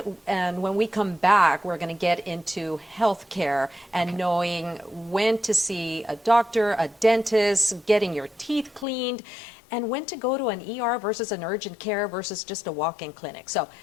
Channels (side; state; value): right; drops out; at 8.8 s